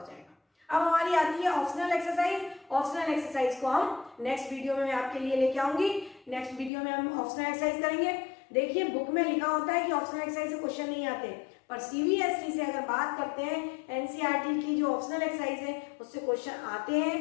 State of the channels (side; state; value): right; drops out; at 6.7 s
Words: जाएगा। अब हमारी आती है ऑप्शनल एक्सरसाइज। ऑप्शनल एक्सरसाइज को हम नेक्स्ट वीडियो में मैं आपके लिए लेके आऊंगी। नेक्स्ट वीडियो में हम ऑप्शनल एक्सरसाइज करेंगे। देखिए बुक में लिखा होता है कि ऑप्शनल एक्सरसाइज से क्वेश्चन नहीं आते, पर सीबीएसई से अगर बात करते हैं, एनसीईआरटी की जो ऑप्शनल एक्सरसाइज है उससे क्वेश्चन आते